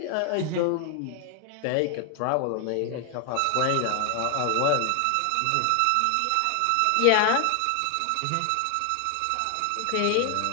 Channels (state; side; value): different; both; correlation 0.00